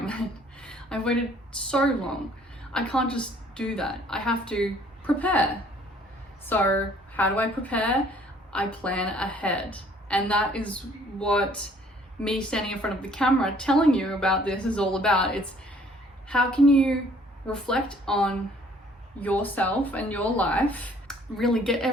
I've waited so long. I can't just do that. I have to prepare. So how do I prepare? I plan ahead. And that is what me standing in front of the camera telling you about this is all about. It's how can you reflect on yourself and your life, really get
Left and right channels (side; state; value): both; normal; correlation 0.59